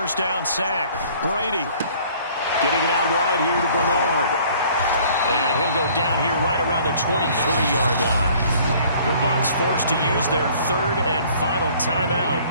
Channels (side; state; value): both; inverted; correlation -0.55